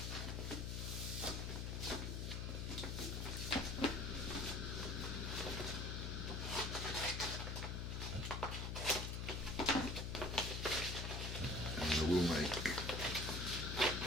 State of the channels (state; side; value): noise; left; hum, 2 dB below the sound